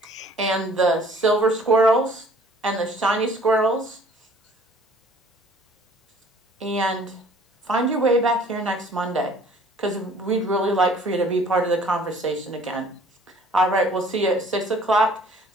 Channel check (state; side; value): normal; both; correlation 0.54